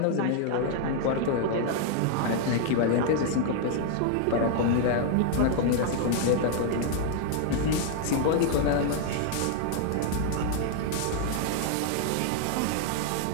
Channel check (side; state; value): both; different; correlation 0.00